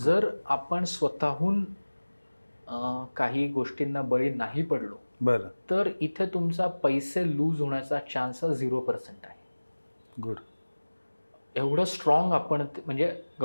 आपण स्वतःहून काही गोष्टींना बळी नाही पडलो बरं तर इथे तुमचा पैसे लूज होण्याचा चान्स 0% आहे. गुड. एवढं स्ट्रॉंग आपण म्हणजे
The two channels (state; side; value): inverted; both; correlation -1.00